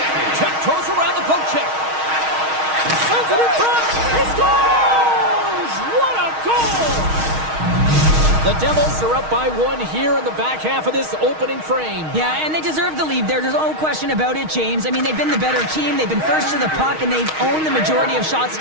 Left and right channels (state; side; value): late; left; 6.4 ms